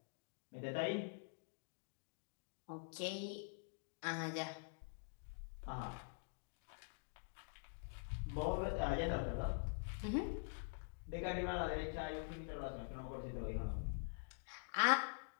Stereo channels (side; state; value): right; silent; digital silence